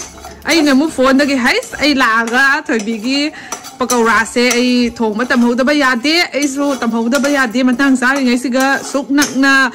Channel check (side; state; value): both; identical; correlation 1.00